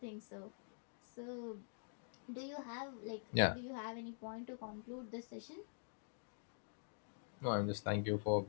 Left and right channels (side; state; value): right; silent; digital silence